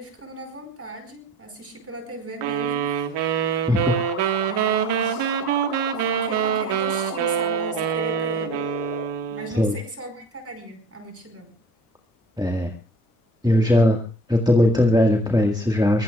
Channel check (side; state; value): both; normal; correlation 0.48